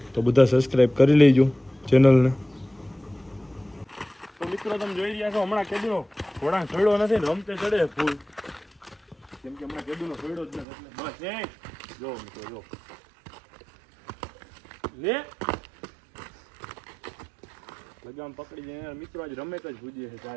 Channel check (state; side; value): drops out; left; at 10.7 s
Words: તો બધા સબસ્ક્રાઈબ કરી લેજો ચેનલને. તો મિત્રો તમે જોઈ રહ્યા છો હમણાં કેદુનો ઘોડા છોડ્યો નથી ને રમતે ચડે ફૂલ, કેમ કે હમણાં કેદુનો છોડ્યો જ નથી. એટલે બસ જો મિત્રો જો લે લગામ પકડી જાય મિત્રો. આજ રમે જ ભૂજીએ છે